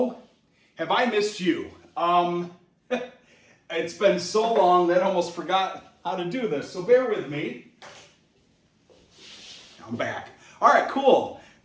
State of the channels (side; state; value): both; identical; correlation 1.00